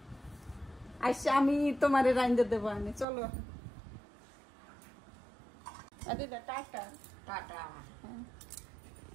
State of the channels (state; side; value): drops out; left; at 3.1 s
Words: আইসা আমি তোমারে রাইন্দা দেবো আনে চলো দিদা টাটা টাটা।